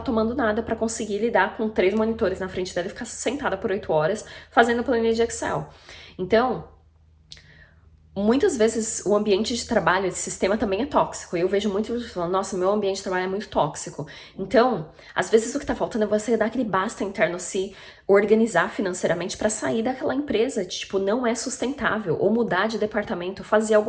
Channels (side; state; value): both; identical; correlation 1.00